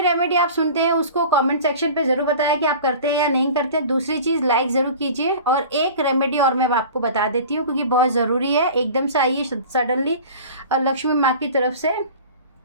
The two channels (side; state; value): both; inverted; correlation -0.40